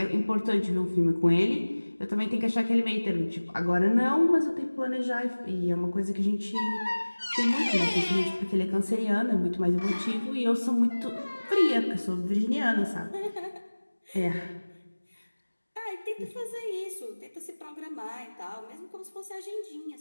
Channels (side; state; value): both; inverted; correlation -1.00